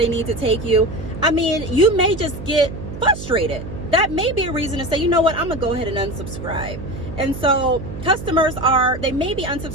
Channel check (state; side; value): noise; right; hum, 10 dB below the sound